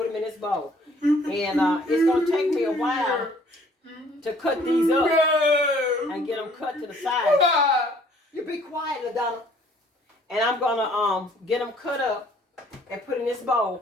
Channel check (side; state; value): both; normal; correlation 0.59